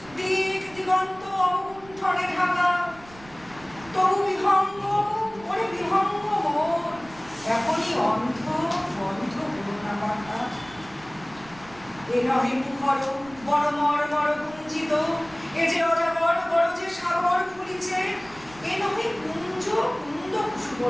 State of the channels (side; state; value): right; noise; rumble, 22 dB below the sound